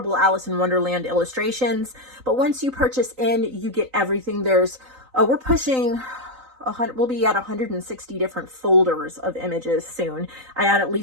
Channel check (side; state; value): left; late; 3.9 ms